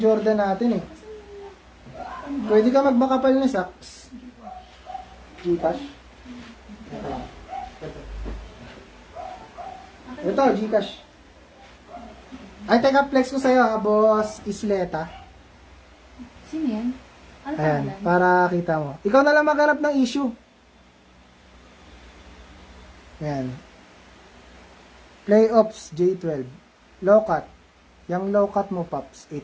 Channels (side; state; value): both; identical; correlation 1.00